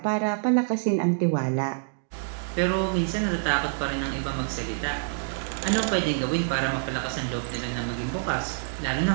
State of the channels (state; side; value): silent; left; digital silence